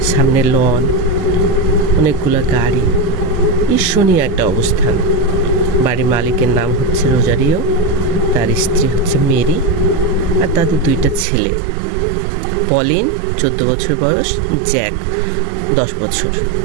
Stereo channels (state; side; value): drops out; left; at 11.2 s